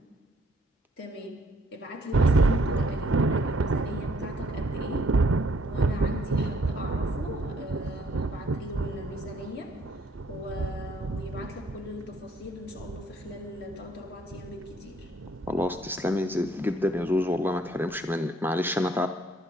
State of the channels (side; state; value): both; normal; correlation 0.64